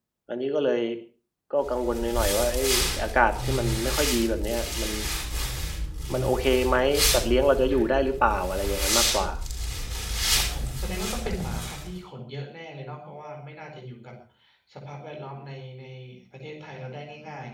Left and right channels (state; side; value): identical; both; correlation 1.00